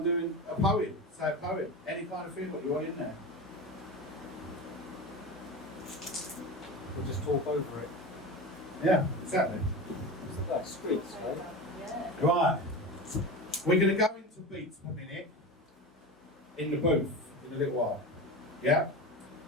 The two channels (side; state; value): both; normal; correlation 0.27